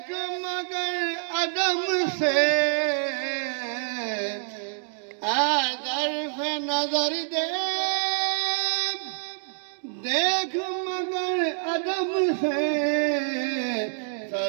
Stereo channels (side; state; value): left; silent; digital silence